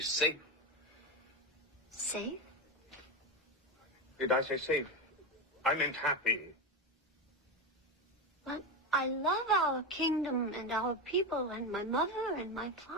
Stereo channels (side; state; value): both; normal; correlation 0.15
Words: Safe? Did I say safe? I meant happy. But I love our kingdom and our people and my mother and my